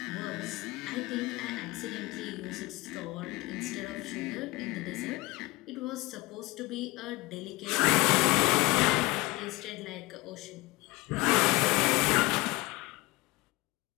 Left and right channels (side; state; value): right; quieter; 21.8 dB